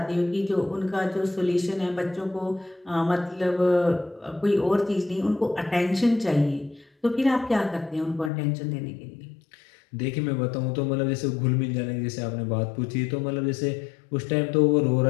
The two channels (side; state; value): right; drops out; at 8.3 s